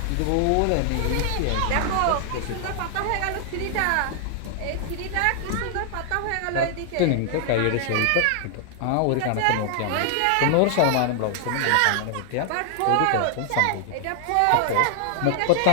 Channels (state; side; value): different; both; correlation 0.00